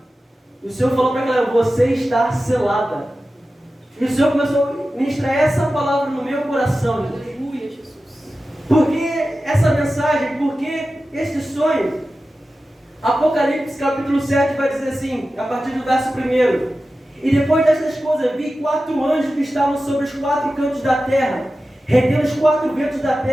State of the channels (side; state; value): both; normal; correlation 0.94